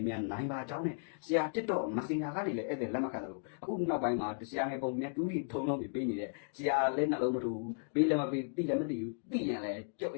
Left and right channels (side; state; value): right; silent; digital silence